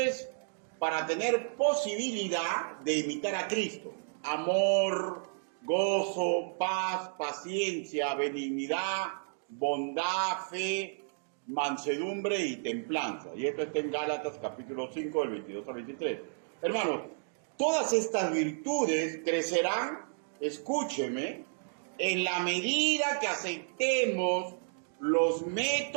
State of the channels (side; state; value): left; silent; digital silence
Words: para tener posibilidad de imitar a Cristo: amor, gozo, paz, paciencia, benignidad, bondad, fe, mansedumbre y templanza. Y esto está en Gálatas capítulo 5 del 22 al 23. Hermanos, todas estas virtudes crecerán, escúcheme, en la medida que aceptemos los